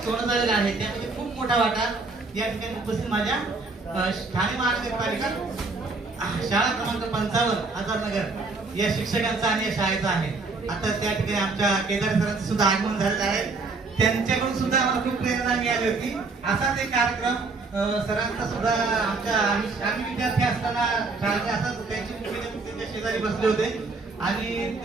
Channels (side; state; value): left; quieter; 3.8 dB